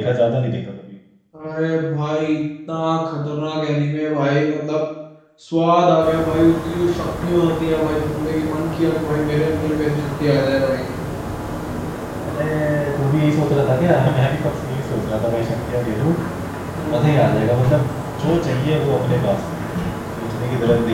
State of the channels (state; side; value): identical; both; correlation 1.00